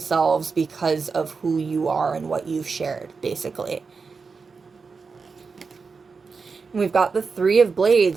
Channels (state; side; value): quieter; left; 4.9 dB